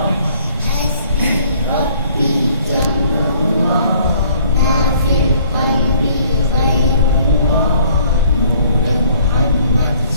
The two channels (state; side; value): inverted; both; correlation -0.59